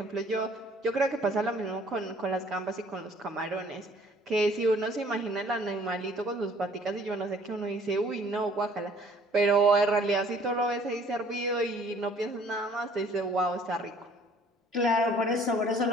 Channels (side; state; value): both; normal; correlation 0.56